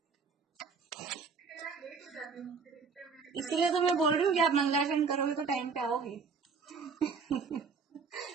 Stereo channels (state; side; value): quieter; left; 5.2 dB